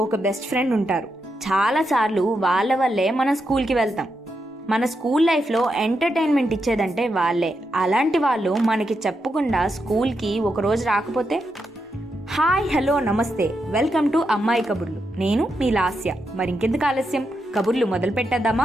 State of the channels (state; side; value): normal; both; correlation 0.84